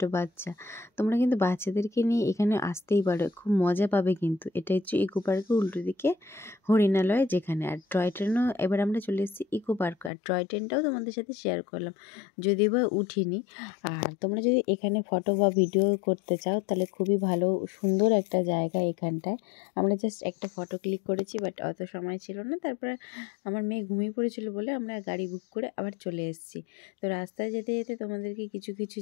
বাচ্চা। তোমরা কিন্তু বাচ্চাদেরকে নিয়ে এখানে আসতেই পারো, খুব মজা পাবে কিন্তু। এটা হচ্ছে ইকো পার্কের উল্টো দিকে হরিণালয় যেখানে। আর টয় ট্রেনও, এবার আমরা চলে এসেছি ইকো পার্ক। আর টয় ট্রেনটাও তোমাদের সাথে শেয়ার করলাম, যদিও বা উঠিনি। আর তোমরা যদি এখানে ফটো বা ভিডিও করতে চাও তাহলে খুবই ভালো, সুন্দর একটা জায়গা এখানটায়। আমরা জাস্ট একটা ফটো ক্লিক করেছি, বাট অত সময় ছিল না। তারপরে আমার মেয়ে ঘুমিয়ে পড়েছিল বলে আমরা গাড়ি বুক করে আবার চলে এসেছি। তো রাস্তায় যেতে যেতে তোমাদেরকে কিছু কিছু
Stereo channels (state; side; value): drops out; right; at 10.1 s